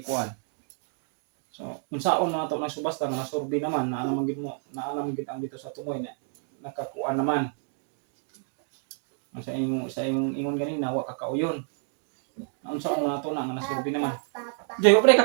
ikuan. So, unsaon na ito ng subasta nga nasurbi naman na anong gid ang dito sa tumoy na nakakuan naman. Ang sa imong ingon ganina wa kakauyon. Unsaon na ito na nga nasurbi naman. Joy, wa pa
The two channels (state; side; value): silent; left; 59 dB below the other